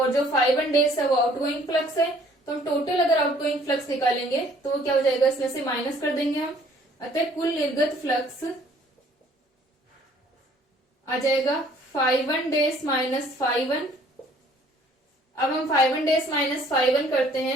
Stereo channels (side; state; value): both; normal; correlation 0.58